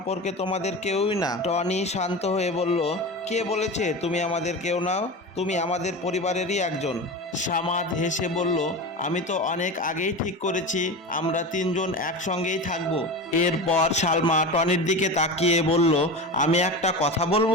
তোমাদের কেউই না। টনি শান্ত হয়ে বলল, কে বলেছে তুমি আমাদের কেউ নাও? তুমি আমাদের পরিবারেরই একজন। সামাদ হেসে বলল, আমি তো অনেক আগেই ঠিক করেছি আমরা 3জন একসঙ্গেই থাকবো। এরপর সালমা টনির দিকে তাকিয়ে বলল, আমি একটা কথা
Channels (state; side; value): normal; both; correlation 0.27